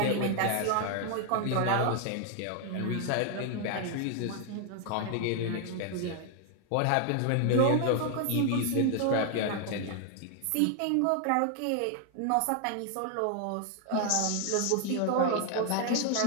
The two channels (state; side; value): different; both; correlation 0.00